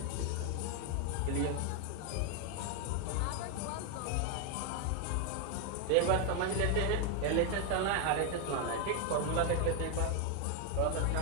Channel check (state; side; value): different; both; correlation 0.01